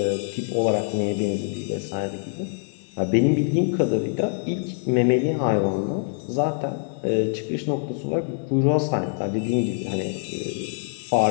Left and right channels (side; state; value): right; silent; digital silence